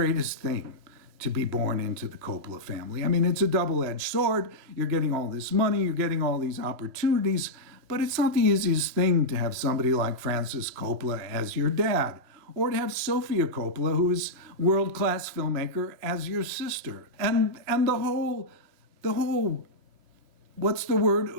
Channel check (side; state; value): left; late; 2.9 ms